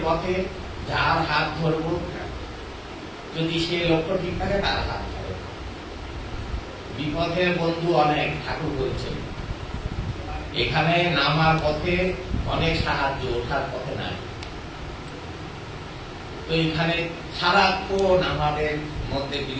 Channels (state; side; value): identical; both; correlation 1.00